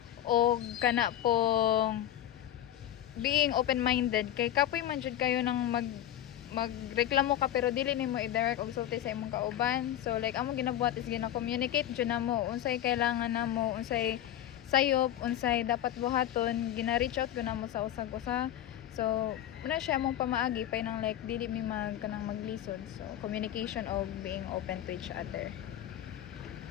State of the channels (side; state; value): right; quieter; 11.8 dB